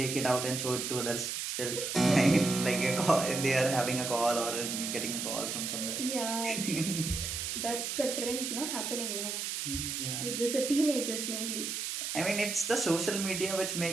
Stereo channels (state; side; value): noise; right; hiss, 3 dB below the sound